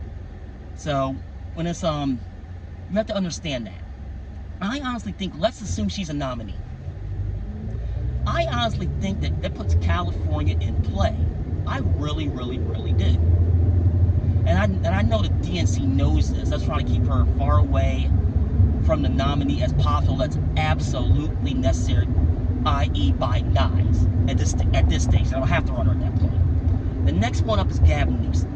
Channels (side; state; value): both; identical; correlation 1.00